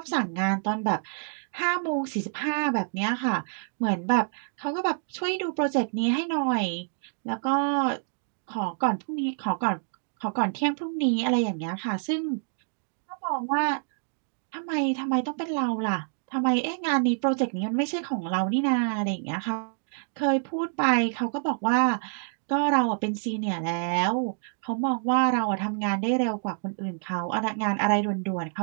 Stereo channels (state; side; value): silent; left; digital silence